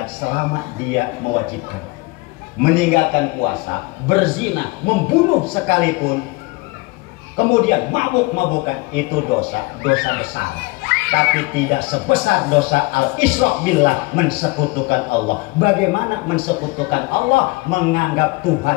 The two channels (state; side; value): quieter; right; 24.1 dB